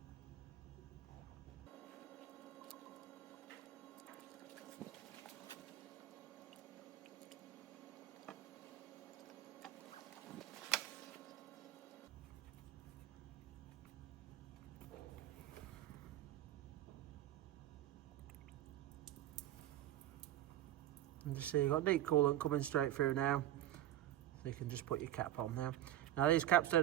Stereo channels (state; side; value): quieter; left; 13.4 dB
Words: And just see you've got neat coolant coming straight through now, so you can just put your cap on now. Now these caps